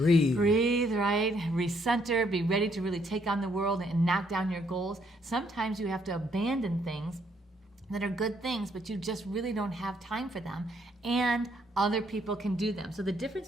Breathe, right? Recenter, be ready to really take on the world and knock down your goals. Sometimes you have to abandon things that are good things, but you just really don't have time for them, and other people can do them. So the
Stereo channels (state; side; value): normal; both; correlation 0.70